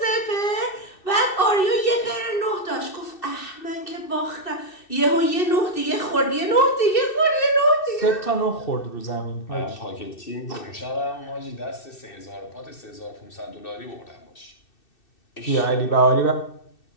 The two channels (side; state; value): right; late; 2.6 ms